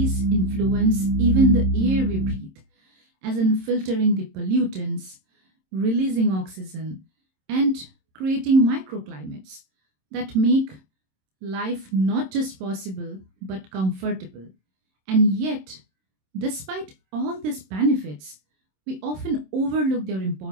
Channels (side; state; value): left; late; 26 ms